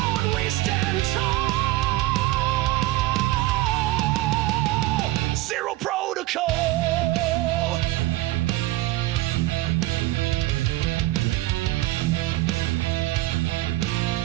we stand tall. Zero protocol.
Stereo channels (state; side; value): quieter; left; 17.5 dB